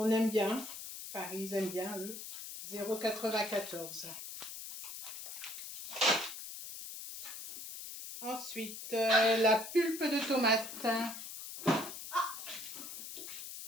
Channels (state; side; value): noise; left; hiss, 9 dB below the sound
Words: aime bien. Enfin, ils aiment bien, eux. 0,94 €. Ensuite, la pulpe de tomate.